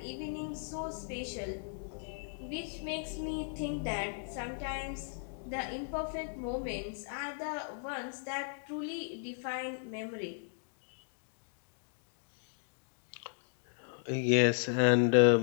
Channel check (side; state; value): right; silent; digital silence